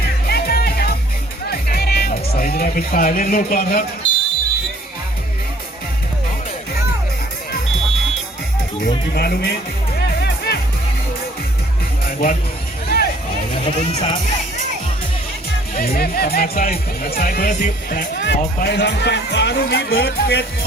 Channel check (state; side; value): normal; both; correlation 0.58